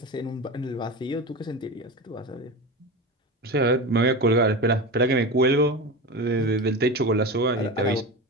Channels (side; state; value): both; normal; correlation 0.25